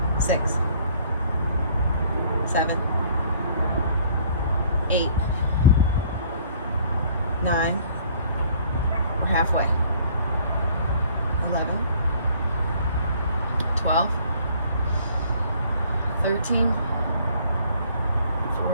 6, 7, 8, 9. We're halfway. 11, 12, 13,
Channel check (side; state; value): both; inverted; correlation -0.58